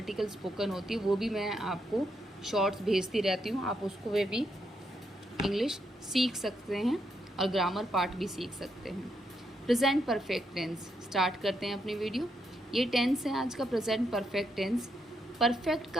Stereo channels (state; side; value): normal; both; correlation 0.79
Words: स्पोकन होती है वो भी मैं आपको शॉर्ट्स भेजती रहती हूँ। आप उसको वे भी इंग्लिश सीख सकते हैं और ग्रामर पार्ट भी सीख सकते हैं। प्रेजेंट परफेक्ट टेंस स्टार्ट करते हैं अपनी वीडियो। ये टेंस है आज का प्रेजेंट परफेक्ट टेंस। परफेक्ट